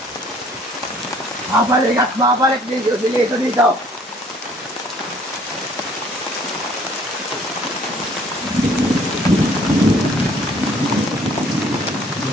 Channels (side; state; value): both; normal; correlation 0.58